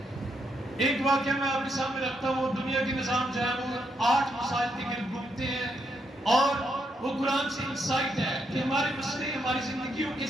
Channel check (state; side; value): normal; both; correlation 0.78